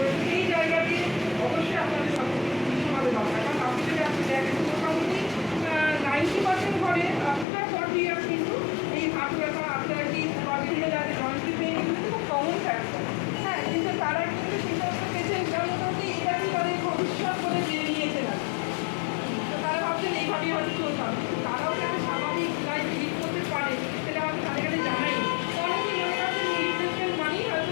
সেই জায়গাতে অবশ্যই আপনাদের সচেতন দরকার, কারণ আপনি যদি আপনি দেখেন মোটামুটি 90% ঘরে আফটার 40 ইয়ার্স কিন্তু এই হার্ট ব্যথা আর্থারাইটিস বা বিভিন্ন জায়গায় জয়েন্ট পেইন এগুলো খুব কমন ফ্যাক্টর। হ্যাঁ, কিন্তু তারা কিন্তু সেই সমস্ত পেশেন্ট মোটামুটি এটাকেই তাদের ভবিষ্যৎ বলে জেনে নিয়েছে না। তো তারা ভাবছেন এইভাবেই হয়তো চলতে হবে, কিন্তু তারাও যাতে স্বাভাবিক লাইফ লিড করতে পারে সেটা হয়তো তাদের কাছে জানাই। অনেকেই মনে করছেন রিপ্লেসমেন্ট মানেই হয়তো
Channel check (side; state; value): right; drops out; at 7.5 s